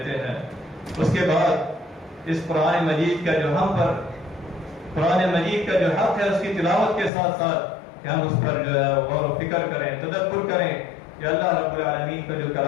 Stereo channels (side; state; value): right; drops out; at 7.1 s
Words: ہیں۔ اس کے بعد اس قرآن مجید کا جو ہم پر قرآن مجید کا جو حق ہے، اس کی تلاوت کے ساتھ ساتھ کہ ہم اس پر جو ہے غور و فکر کریں، تدبر کریں کہ اللہ رب العالمین کا جو